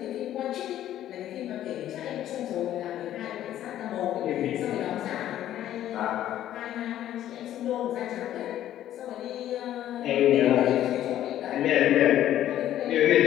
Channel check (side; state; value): right; quieter; 12.2 dB